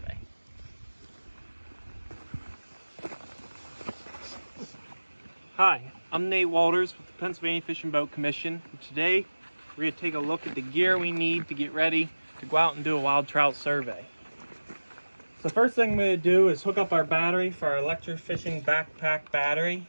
Hi, I'm Nate Walters with the Pennsylvania Fish and Boat Commission. And today, we're going to take a look at the gear we need to get ready to go out and do a wild trout survey. So the first thing I'm going to do is hook up our battery for our electrofishing backpack battery.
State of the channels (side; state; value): both; inverted; correlation -1.00